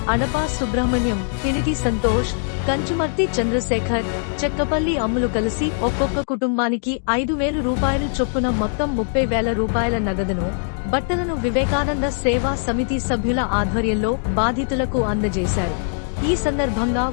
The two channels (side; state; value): right; silent; digital silence